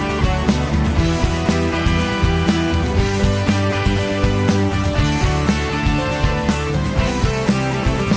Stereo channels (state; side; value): identical; both; correlation 1.00